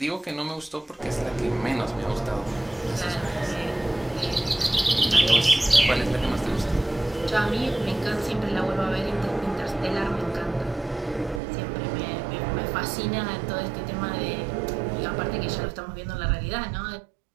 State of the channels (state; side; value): drops out; left; at 11.4 s